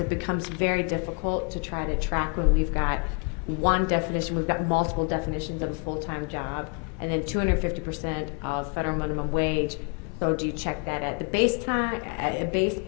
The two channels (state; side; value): quieter; right; 38.1 dB